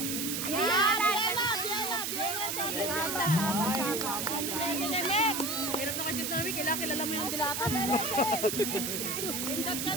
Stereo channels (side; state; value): right; noise; hiss, 2 dB below the sound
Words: Saba, saba, saba. Hirap na kasi namin, kailangan kilala mo yung dilata. Pindot ka